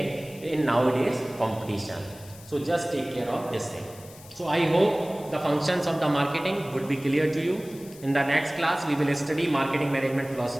in nowadays competition. So just take care of this thing. So I hope the functions of the marketing would be clear to you. In the next class, we will study marketing management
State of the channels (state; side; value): noise; left; hiss, 20 dB below the sound